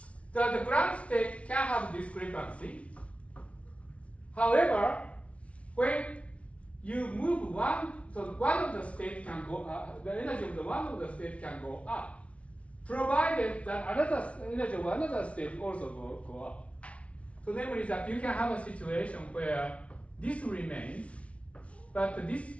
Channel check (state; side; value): late; right; 0.063 ms